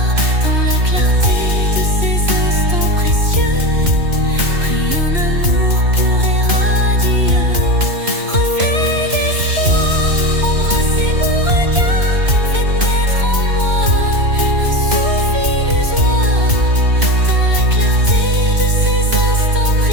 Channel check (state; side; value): late; left; 3.0 ms